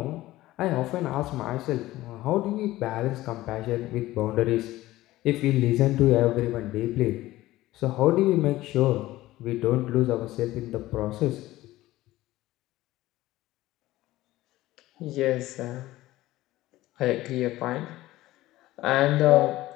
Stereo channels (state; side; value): quieter; right; 16.7 dB